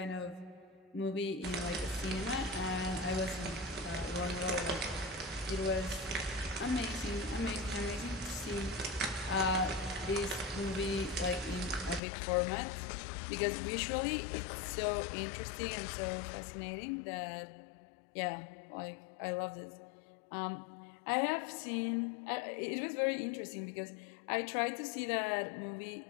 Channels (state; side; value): drops out; right; at 12.0 s